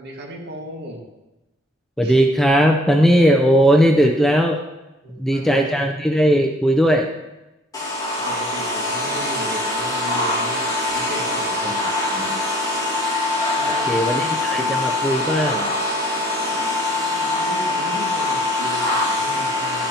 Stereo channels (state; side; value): normal; both; correlation 0.60